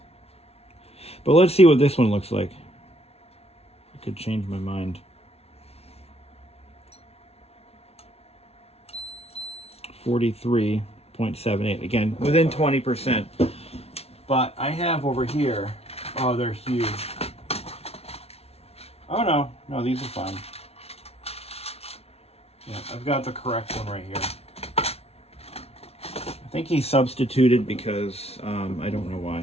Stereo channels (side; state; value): right; late; 0.30 ms